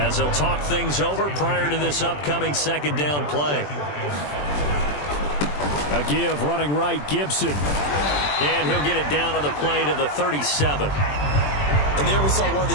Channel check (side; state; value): right; late; 20 ms